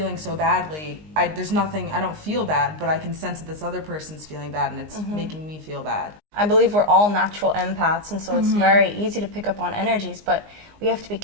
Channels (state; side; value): late; left; 19 ms